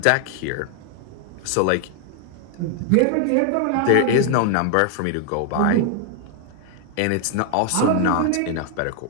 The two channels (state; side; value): different; both; correlation 0.00